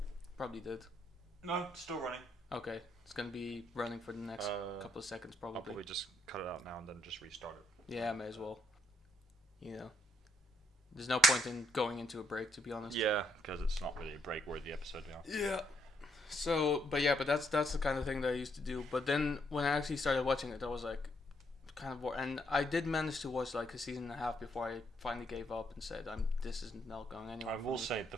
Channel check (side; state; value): both; normal; correlation 0.74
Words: Probably did. No, still running. Okay, it's gonna be running for the next couple of seconds I'll probably. probably just cut it out now and then just restart it. Yeah, may as well. You know, there's no point in going into a break, to be honest. Yeah, because it's not really a break-worthy episode now. Yeah. So, but that's the kind of thing that I used to do. But then when I actually started watching it, I was like, kind of bored. And I did manage to watch like a season and a half before I finally gave up and said, this is not going anywhere. I will say the